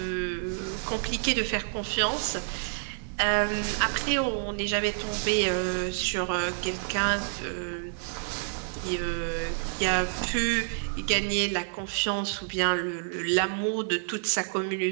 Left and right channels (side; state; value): left; silent; digital silence